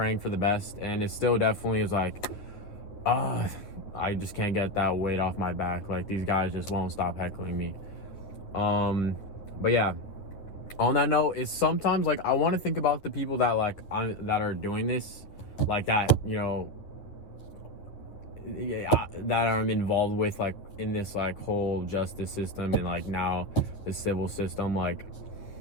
for the best, and it still definitely is like, I just can't get that weight off my back. Like, these guys just won't stop heckling me. But yeah, on that note, is sometimes like I want to think about the people that that are doing this, like that, that I'm involved with, like in this like whole justice system and like now the civil system. Like,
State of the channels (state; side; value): late; right; 9.7 ms